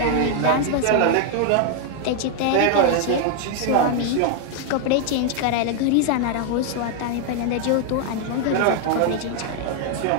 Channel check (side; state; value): both; different; correlation 0.00